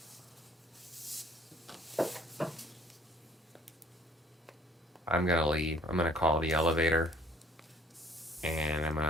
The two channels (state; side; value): normal; both; correlation 0.57